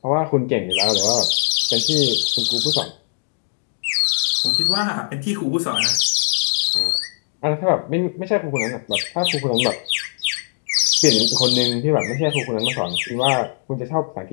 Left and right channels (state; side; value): silent; right; digital silence